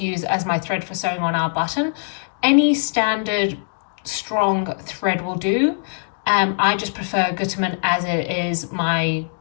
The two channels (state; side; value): silent; right; digital silence